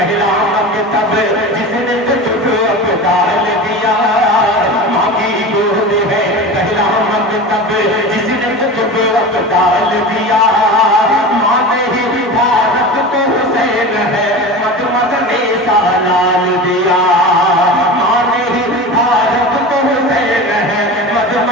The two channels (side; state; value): both; normal; correlation 0.30